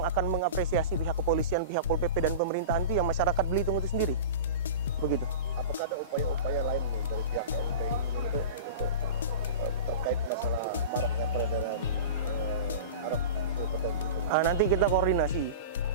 akan mengapresiasi pihak kepolisian, pihak Pol PP dan pemerintahan itu yang masyarakat Belitung itu sendiri. Begitu. Apakah ada upaya-upaya lain nih dari pihak KNPI untuk terkait masalah maraknya peredaran arak di Kota Belitung? Nanti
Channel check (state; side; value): inverted; both; correlation -0.32